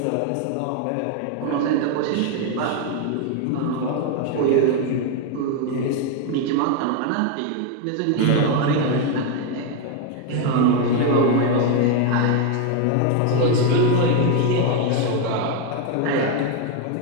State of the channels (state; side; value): different; both; correlation 0.02